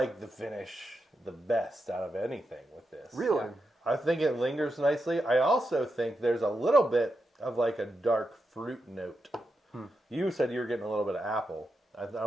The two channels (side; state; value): both; normal; correlation 0.87